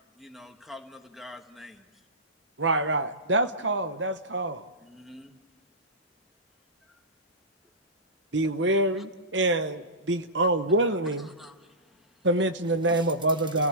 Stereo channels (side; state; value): both; normal; correlation -0.18